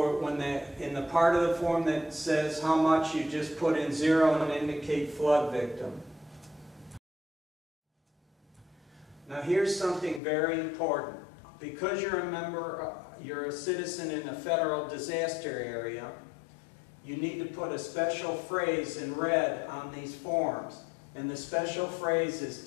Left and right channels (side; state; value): right; drops out; at 10.2 s